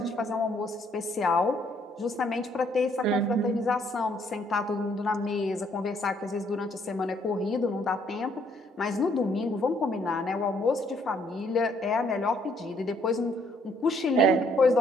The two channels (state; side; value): normal; both; correlation 0.67